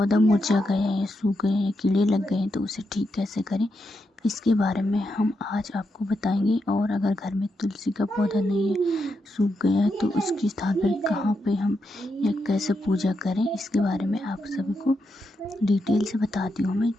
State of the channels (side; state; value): both; normal; correlation 0.84